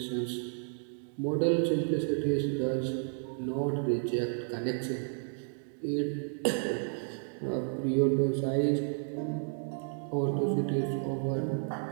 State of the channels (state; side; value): silent; left; digital silence